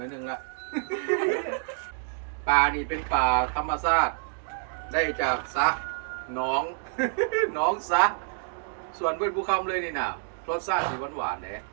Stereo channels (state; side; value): silent; left; digital silence